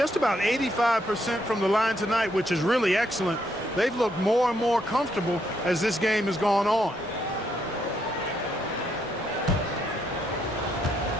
about 85% from the line tonight, which is really excellent, they've looked more and more comfortable as this game has gone on.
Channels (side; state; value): both; normal; correlation 0.75